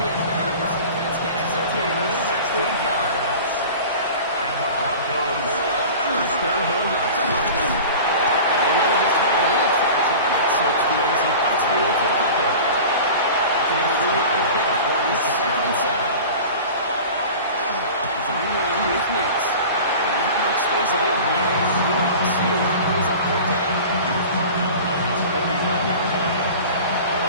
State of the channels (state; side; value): inverted; both; correlation -0.37